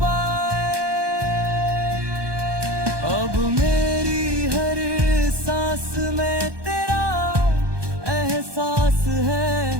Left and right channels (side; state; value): left; late; 1.2 ms